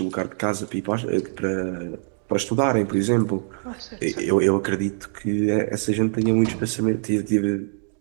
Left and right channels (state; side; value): silent; left; digital silence